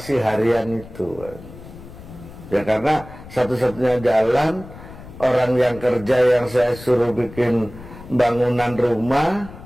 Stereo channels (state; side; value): noise; left; rumble, 16 dB below the sound